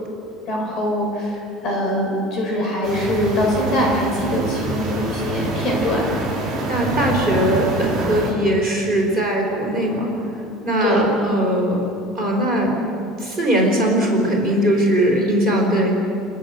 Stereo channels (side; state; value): both; normal; correlation 0.40